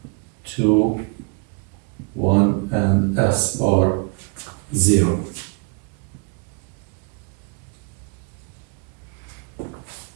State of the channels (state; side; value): quieter; left; 33.1 dB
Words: 2, 1, and s power 0.